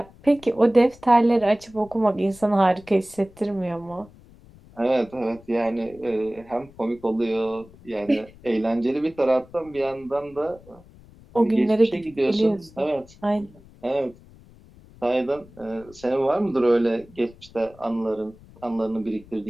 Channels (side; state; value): left; noise; rumble, 24 dB below the sound